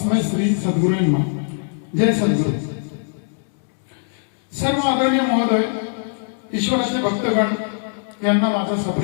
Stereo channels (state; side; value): silent; right; digital silence